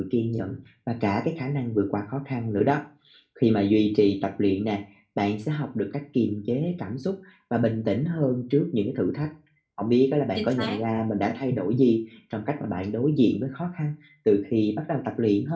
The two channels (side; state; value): both; identical; correlation 1.00